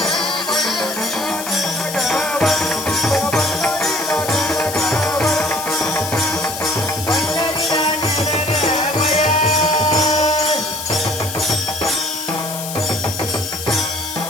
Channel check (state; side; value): noise; left; hiss, 8 dB below the sound